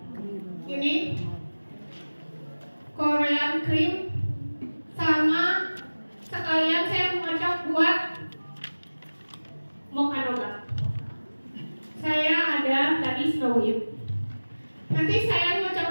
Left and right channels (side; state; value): both; inverted; correlation -1.00